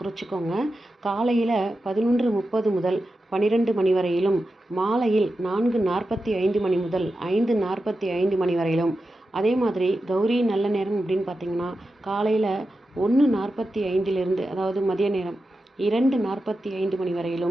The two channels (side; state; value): both; normal; correlation 0.91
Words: காலையில் 11:30 முதல் 12 மணி வரையிலும், மாலையில் 4:45 மணி முதல் 5:45 மணி வரையிலும். அதே மாதிரி கௌரி நல்ல நேரம் அப்படின்னு பார்த்திங்கன்னா காலையில் 1:45 அதாவது மதிய நேரம் 2:45 மணி